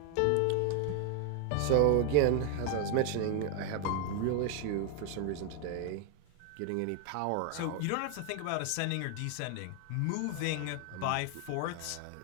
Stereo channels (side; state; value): both; different; correlation 0.00